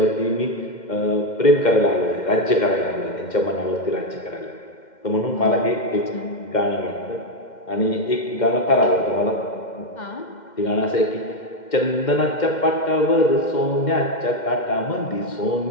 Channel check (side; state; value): right; late; 2.1 ms